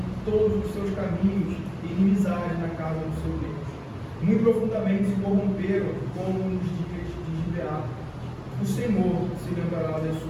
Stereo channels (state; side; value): identical; both; correlation 1.00